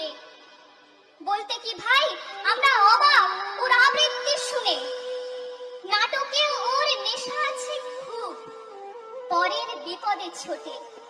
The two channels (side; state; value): both; identical; correlation 1.00